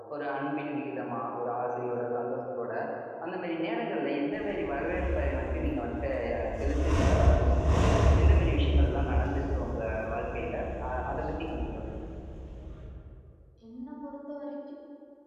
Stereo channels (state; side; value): identical; both; correlation 1.00